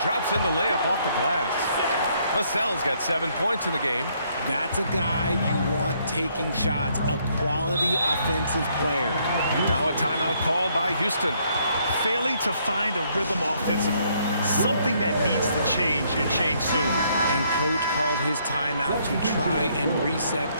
drops in the layup off the glass. Vassell's got 7 points in the game. That's a guy you want taking shots, a quality offensive player. Now a timeout called by Houston. Failing to find a rhythm offensively, something that needs to change and change soon. And coach called his timeout to try and reset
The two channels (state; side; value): inverted; both; correlation -0.69